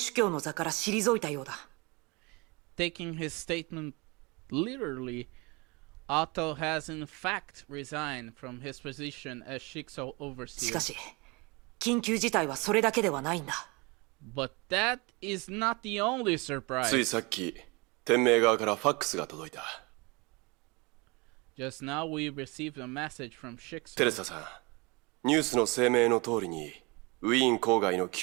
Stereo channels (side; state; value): left; quieter; 27.1 dB